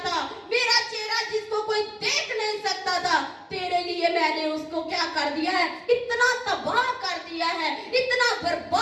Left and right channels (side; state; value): both; identical; correlation 1.00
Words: मेरा चेहरा जिसको कोई देख नहीं सकता था, तेरे लिए मैंने उसको क्या कर दिया है, इतना तबाह कर दिया है, इतना